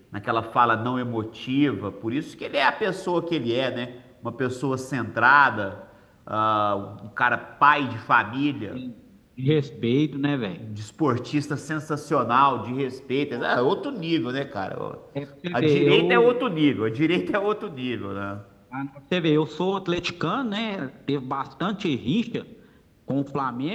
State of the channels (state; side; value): identical; both; correlation 1.00